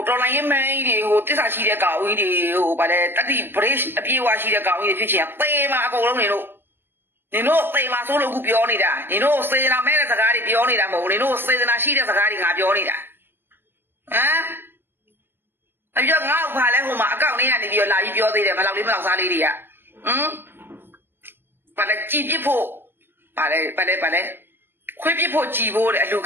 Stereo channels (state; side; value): late; left; 0.10 ms